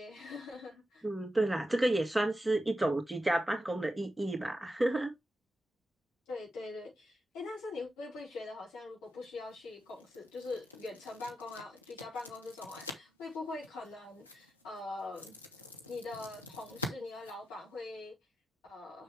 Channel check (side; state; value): both; normal; correlation 0.89